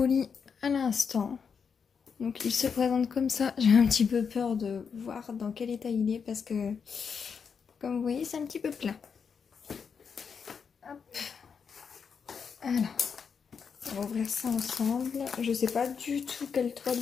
à l'instant, donc il se présente comme ça. J'ai un petit peu peur de voir dans quel état il est parce que comme vous voyez c'est un petit peu plat. Hop. Alors on va ouvrir ça ensemble, je sais pas du tout quelle toile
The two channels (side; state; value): right; quieter; 6.3 dB